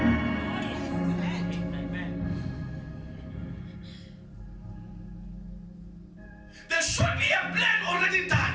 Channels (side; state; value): both; identical; correlation 1.00